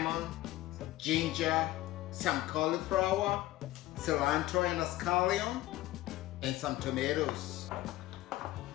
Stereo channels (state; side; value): quieter; right; 16.5 dB